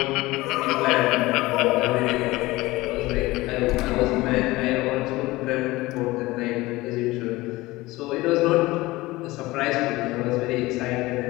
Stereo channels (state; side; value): quieter; right; 19.8 dB